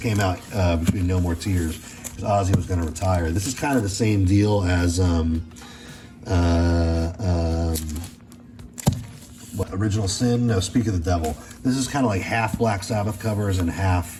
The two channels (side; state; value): both; identical; correlation 1.00